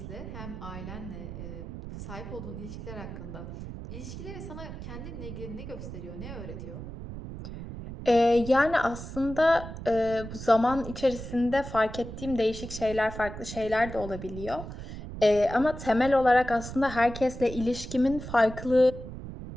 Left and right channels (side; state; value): right; noise; rumble, 10 dB below the sound